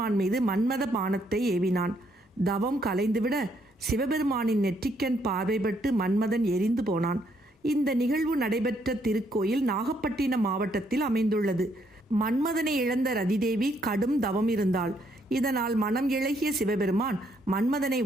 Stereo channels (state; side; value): normal; both; correlation 0.72